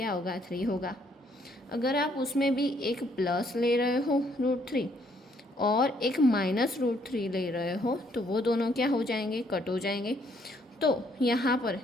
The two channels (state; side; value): normal; both; correlation 0.68